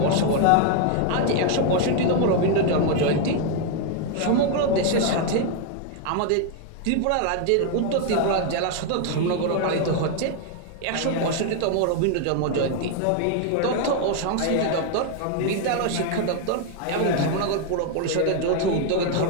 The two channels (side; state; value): both; different; correlation 0.01